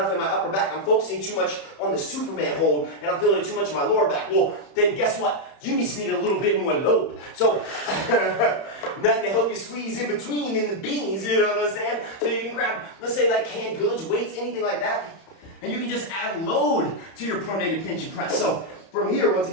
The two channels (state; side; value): late; right; 31 ms